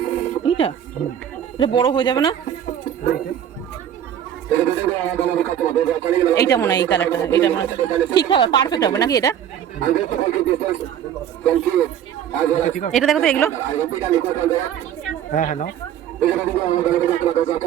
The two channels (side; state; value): left; quieter; 9.9 dB